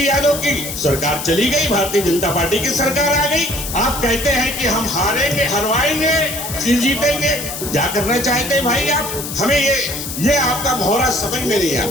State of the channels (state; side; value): noise; left; hiss, 7 dB below the sound